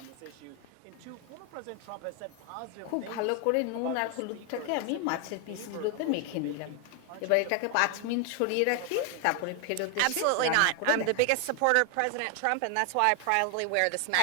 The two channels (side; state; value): both; different; correlation 0.01